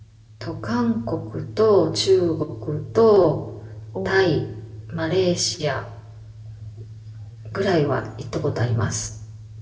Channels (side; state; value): both; identical; correlation 1.00